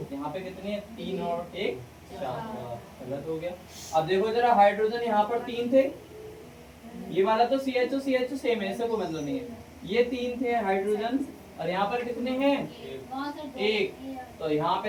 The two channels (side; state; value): both; identical; correlation 1.00